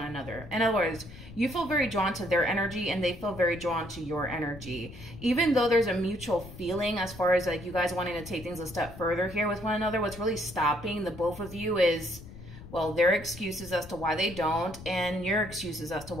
another. In other words, you feel very drawn to their energy and they feel very drawn to your energy. Even though there's a mutual feeling as far as like you guys wanting to take things a step further here with one another, what's really stopping the both of you is, well, their excuses as to why they don't, and your excuses as to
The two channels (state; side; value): noise; left; rumble, 15 dB below the sound